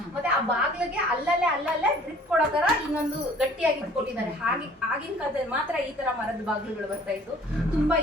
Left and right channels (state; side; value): normal; both; correlation 0.53